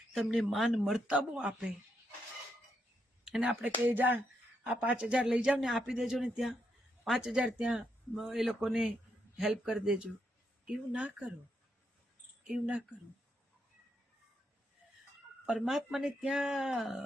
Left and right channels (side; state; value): both; normal; correlation 0.80